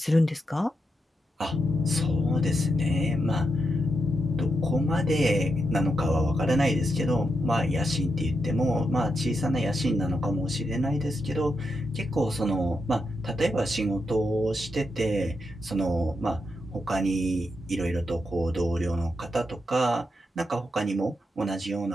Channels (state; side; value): normal; both; correlation 0.84